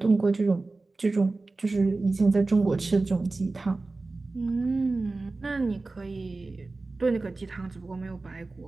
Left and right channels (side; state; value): left; quieter; 3.4 dB